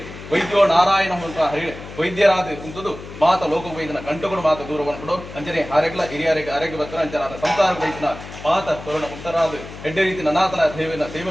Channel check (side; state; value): left; noise; hum, 14 dB below the sound